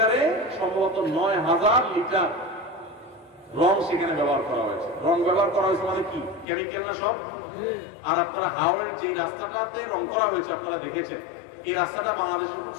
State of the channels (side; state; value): right; drops out; at 6.5 s